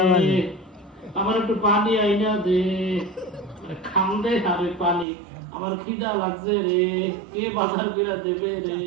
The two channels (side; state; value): left; drops out; at 5.1 s